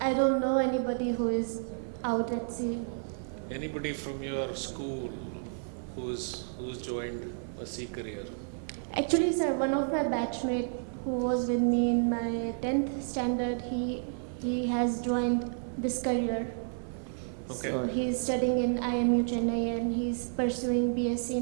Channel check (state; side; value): silent; left; 57 dB below the other